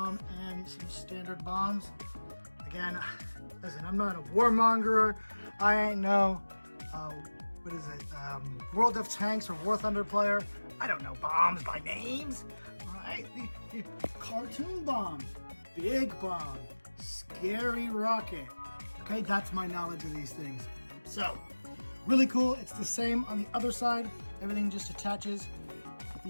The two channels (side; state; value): both; inverted; correlation -1.00